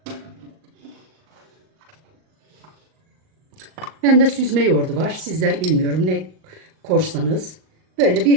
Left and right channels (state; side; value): late; left; 38 ms